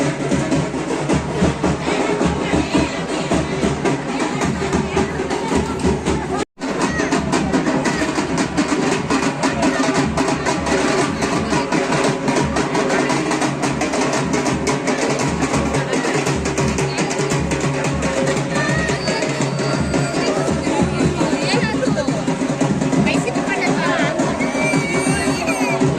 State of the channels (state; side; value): identical; both; correlation 1.00